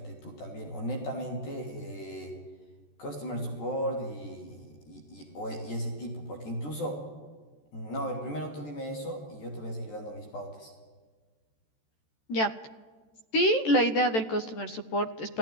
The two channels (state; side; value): late; right; 14 ms